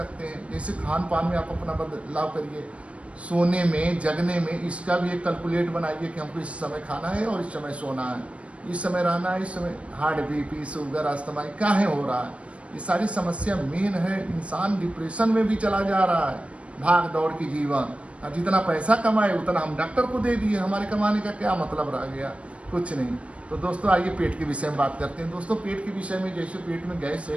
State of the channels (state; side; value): late; left; 0.062 ms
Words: हैं। जैसे खान पान में आप अपना बदलाव करिए, सोने में, जगने में, इसका भी एक कैलकुलेट बनाइए कि हमको इस समय खाना है और इस समय सोना है, इस समय रहना है, इस समय हार्ट बीपी, शुगर, अस्थमा काहे हो रहा है। ये सारी समस्या मेन है। इंसान डिप्रेशन में भी चला जा रहा है, भाग दौड़ की जीवन। और जितना पैसा कमाए उतना हम डॉक्टर को दे दिए, हमारे कमाने का क्या मतलब रह गया, कुछ नहीं। तो दोस्तों आइए पेट के विषय में बात करते हैं। दोस्तों पेट के विषय में, जैसे पेट में गैस